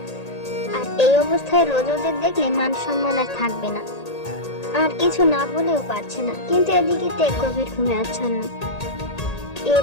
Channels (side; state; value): right; late; 1.8 ms